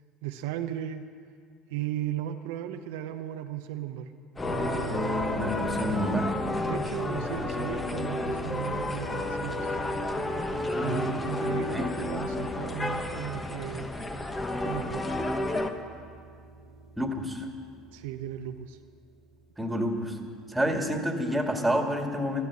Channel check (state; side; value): normal; both; correlation 0.62